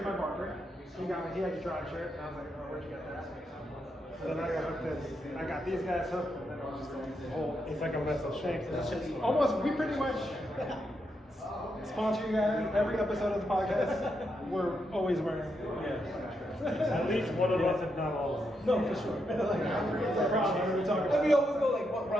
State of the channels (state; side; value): normal; both; correlation 0.82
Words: my barber. He had a Drive shirt, and I was like, oh, where'd you get that? So then I got hooked in. I got these guys hooked, and then I was just like, the whole. It's like a mess of shakes. Almost, we pretty much sponsor you guys every episode of the podcast. We're always wearing. At least one of us, if not all of us. No, for sure. Like, It's a problem. We're talking and about. we always go like, what